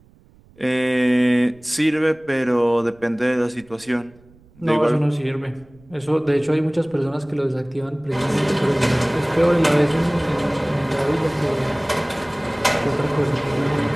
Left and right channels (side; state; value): right; noise; rumble, 28 dB below the sound